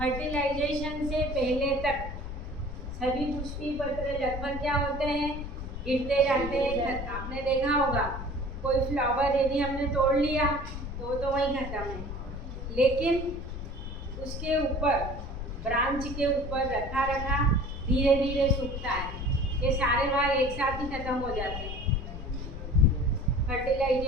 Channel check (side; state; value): left; noise; rumble, 7 dB below the sound